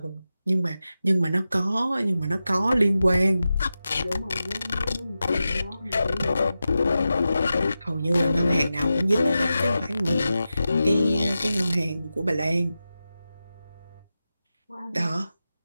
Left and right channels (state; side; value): inverted; both; correlation -0.92